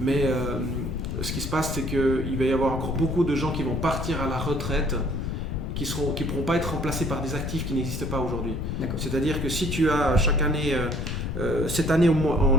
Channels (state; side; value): noise; left; rumble, 3 dB below the sound